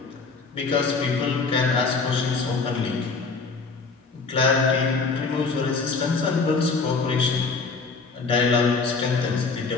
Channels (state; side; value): quieter; right; 4.4 dB